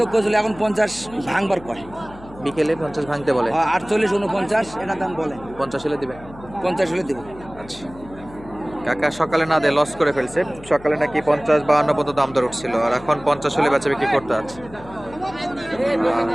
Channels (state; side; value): noise; left; hum, 18 dB below the sound